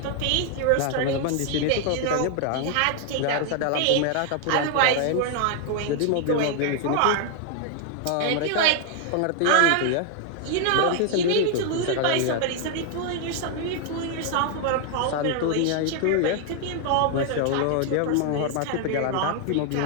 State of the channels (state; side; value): different; both; correlation 0.00